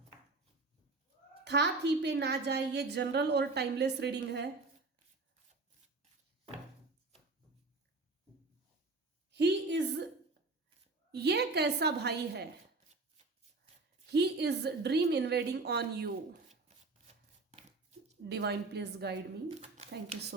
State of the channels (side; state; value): left; quieter; 3.5 dB